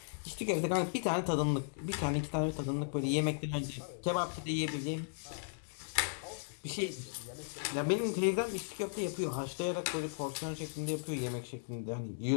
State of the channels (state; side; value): silent; right; digital silence